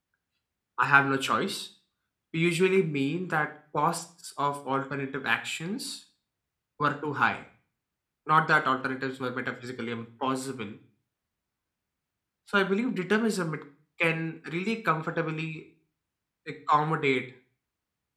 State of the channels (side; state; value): both; identical; correlation 1.00